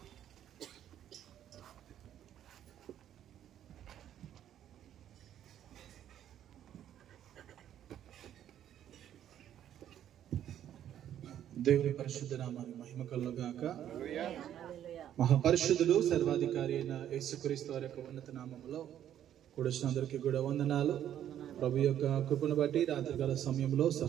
దేవుని పరిశుద్ధ నామానికి మహిమ కలుగుగాక. మహాపరిశుద్ధుడు సర్వాధికారి అయిన యేసుక్రీస్తు వారి యొక్క ఉన్నత నామములో కూడొచ్చిన అందరికీ కూడా వందనాలు. ప్రభు యొక్క కృపను బట్టి రాత్రికాల సమయంలో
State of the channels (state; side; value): quieter; left; 10.7 dB